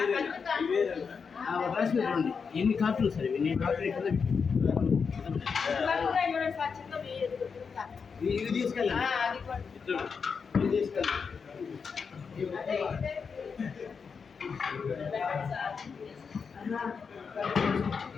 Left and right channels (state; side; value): quieter; right; 5.7 dB